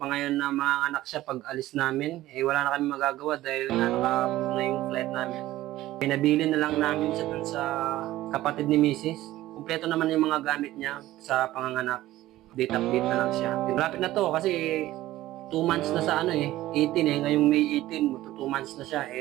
na mga anak siya pag alis namin. Eh, wala na kami magagawa dahil nakapag na yung flight namin. Pinabili na lang namin siya dun sa kapatid ni Mrs. Kumpleto naman yung mga gamit niya sa panganganak. Update na lang siya. Malapit na to kasi 2 months na sa 18 ngayong May 18, 2 months na siya.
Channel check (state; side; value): quieter; left; 15.7 dB